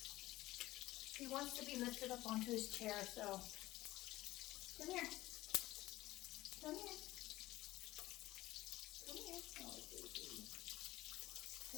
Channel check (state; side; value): quieter; right; 17.0 dB